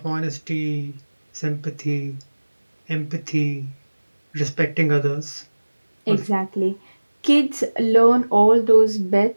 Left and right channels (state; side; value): inverted; both; correlation -1.00